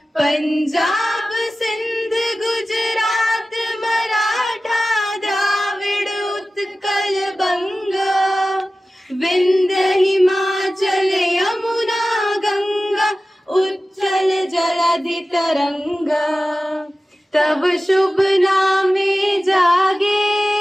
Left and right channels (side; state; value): both; normal; correlation 0.95